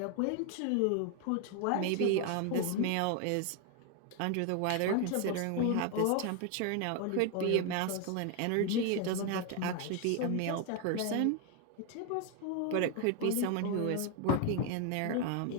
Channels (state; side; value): different; both; correlation 0.01